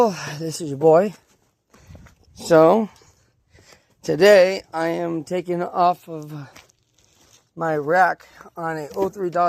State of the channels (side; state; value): both; identical; correlation 1.00